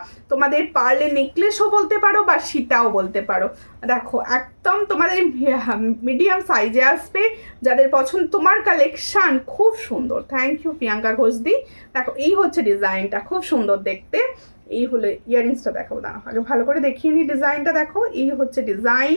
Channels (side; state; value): both; inverted; correlation -1.00